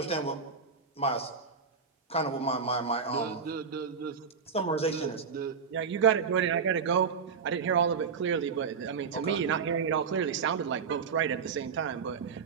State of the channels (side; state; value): left; quieter; 5.9 dB